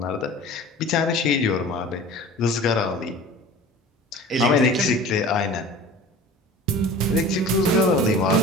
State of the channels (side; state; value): both; normal; correlation 0.40